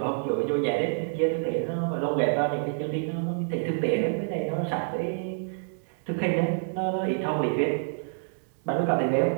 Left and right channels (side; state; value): left; silent; digital silence